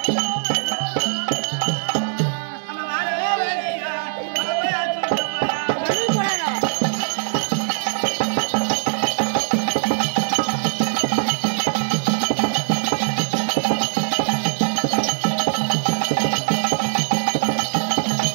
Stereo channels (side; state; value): left; silent; digital silence